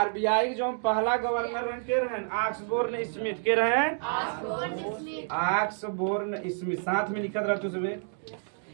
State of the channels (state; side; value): silent; left; digital silence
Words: जो पहला गवर्नर के रहे ऑक्सबोर्न स्मिथ के रहे ऑक्सबोर्न स्मिथ साथ में लिखत रहते सुबह